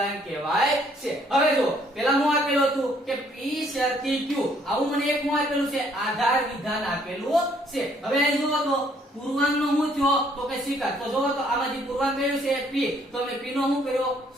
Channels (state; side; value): normal; both; correlation 0.65